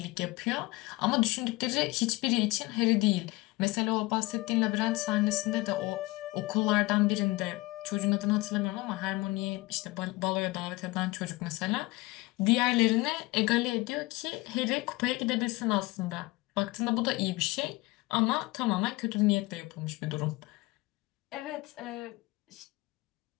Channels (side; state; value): right; quieter; 21.7 dB